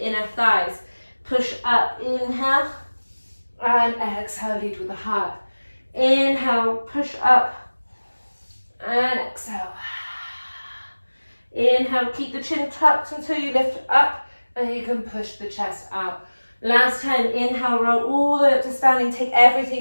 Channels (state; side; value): inverted; both; correlation -1.00